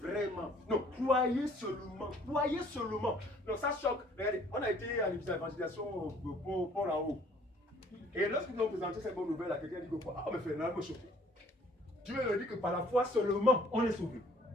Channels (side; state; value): both; normal; correlation 0.57